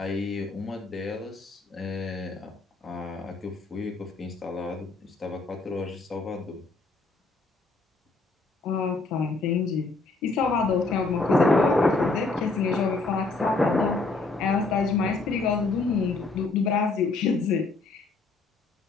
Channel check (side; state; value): right; quieter; 3.7 dB